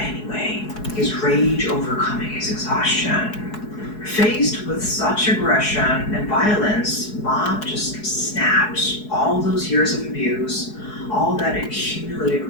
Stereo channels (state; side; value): late; right; 4.7 ms